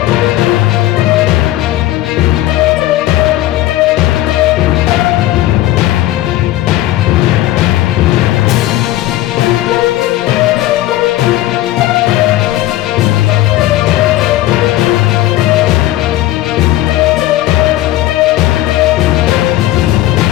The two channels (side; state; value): right; quieter; 15.0 dB